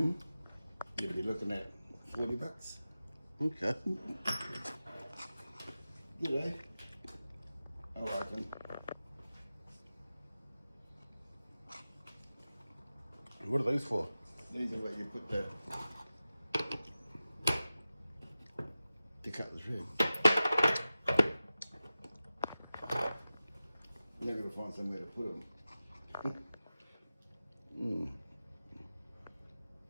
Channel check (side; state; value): both; inverted; correlation -0.94